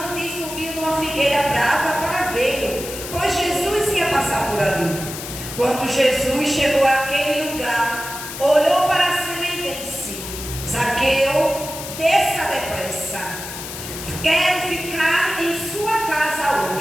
e subiu numa figueira brava para vê-lo, pois Jesus ia passar por ali. Quando Jesus chegou àquele lugar, olhou para cima e disse: Zaqueu, desça depressa. Quero ficar em sua casa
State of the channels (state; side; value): noise; left; hiss, 9 dB below the sound